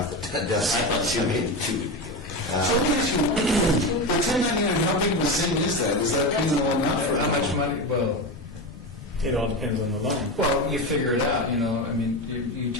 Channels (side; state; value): both; normal; correlation 0.19